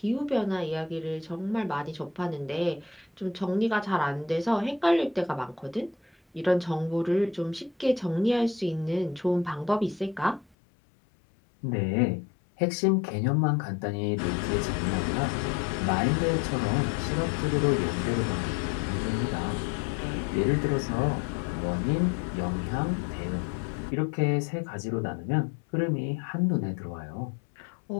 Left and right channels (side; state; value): right; drops out; at 10.5 s